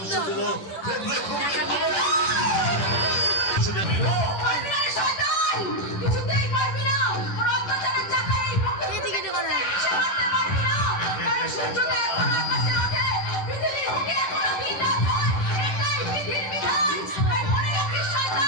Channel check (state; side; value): late; right; 10 ms